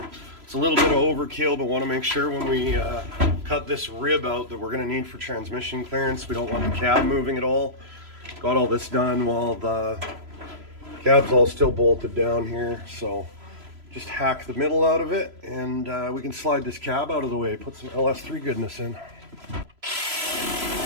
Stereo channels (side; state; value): left; late; 3.0 ms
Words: It's a little bit of overkill, but want to make sure when we cut this rib out that we're going to need for transmission clearance. We don't want the cab moving at all. Got all this done while the cab's all still bolted down here. So just hack the middle out of it, and we can slide this cab out of the way, put some LS3 goodness in.